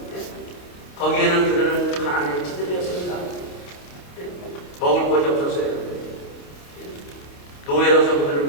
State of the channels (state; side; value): late; right; 28 ms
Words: 거기에는 그들은 가난에 찌들렸습니다. 먹을 것이 없었어요. 노예로서